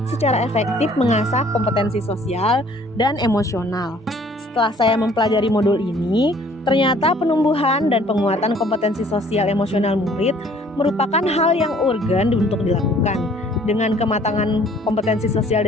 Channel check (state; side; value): normal; both; correlation 0.57